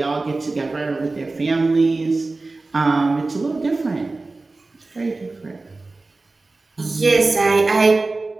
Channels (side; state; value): left; quieter; 3.4 dB